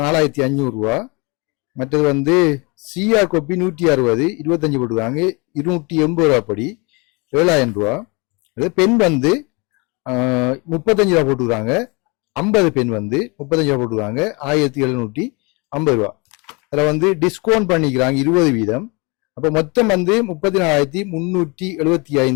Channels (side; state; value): right; quieter; 29.0 dB